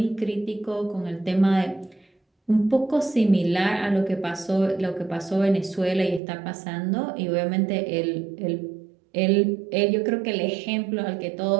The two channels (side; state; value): left; drops out; at 6.2 s